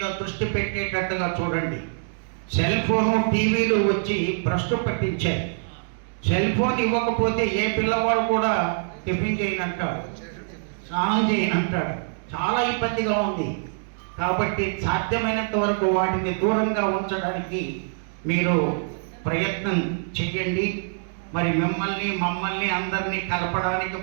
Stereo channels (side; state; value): left; silent; digital silence